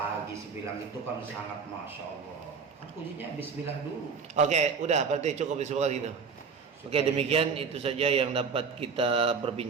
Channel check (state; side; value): quieter; left; 5.5 dB